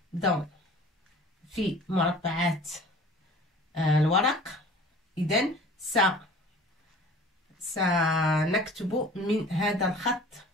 dans في مربعات الورق. إذن سنكتب من هذا الخط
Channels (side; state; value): both; normal; correlation 0.45